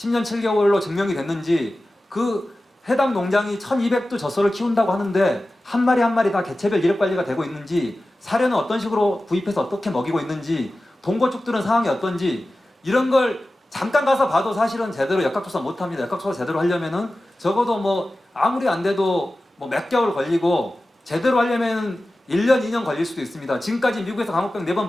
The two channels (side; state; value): both; normal; correlation 0.95